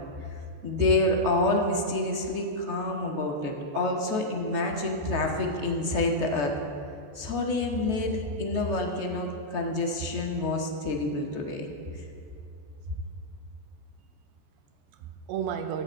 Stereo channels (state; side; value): late; left; 14 ms